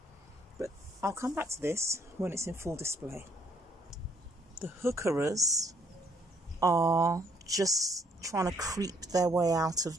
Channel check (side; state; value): both; normal; correlation 0.67